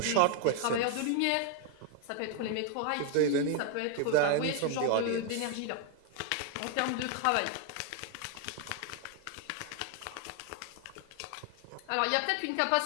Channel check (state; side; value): different; both; correlation 0.00